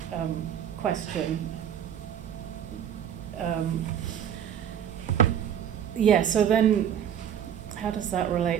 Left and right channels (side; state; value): left; quieter; 9.3 dB